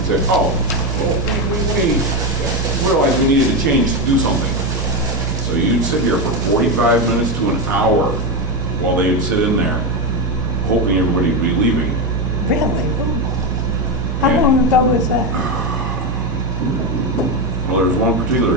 say, oh, well, we realized we needed to change, do something. So you'd sit here for 45 minutes to an hour while they would sit in there, hoping everybody would be leaving. Really? How long ago was that? Well, there was one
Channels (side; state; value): both; normal; correlation 0.12